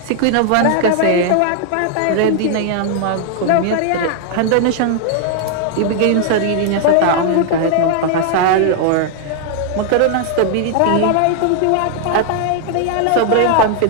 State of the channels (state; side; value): different; both; correlation 0.00